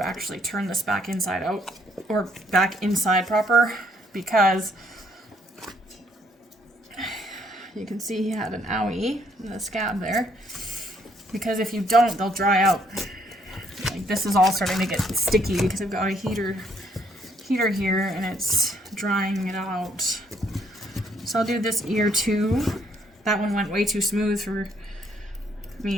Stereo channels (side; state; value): both; normal; correlation 0.68